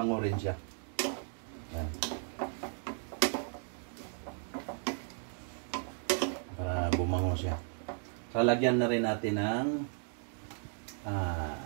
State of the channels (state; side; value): silent; left; 54 dB below the other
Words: rin siya. Ayan. Para bumango siya. So, lagyan na rin natin ng